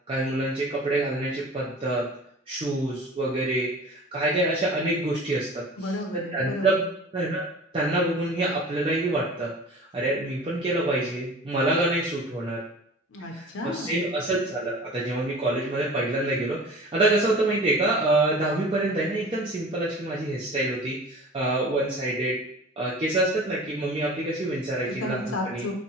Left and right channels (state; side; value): normal; both; correlation 0.41